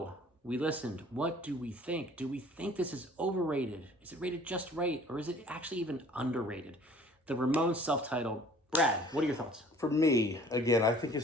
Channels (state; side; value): normal; both; correlation 0.52